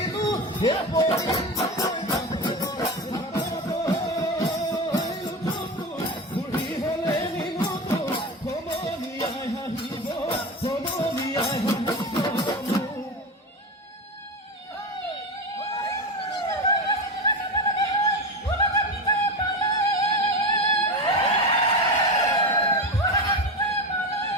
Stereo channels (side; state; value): both; normal; correlation 0.21